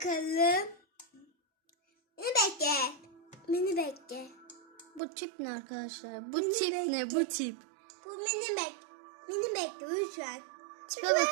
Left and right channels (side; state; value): left; drops out; at 5.0 s